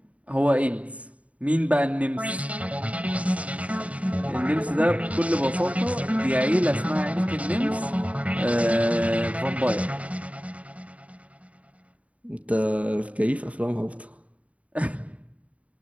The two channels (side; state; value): left; late; 0.067 ms